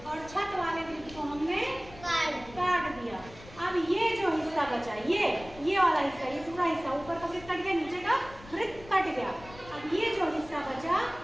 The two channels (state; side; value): noise; left; rumble, 18 dB below the sound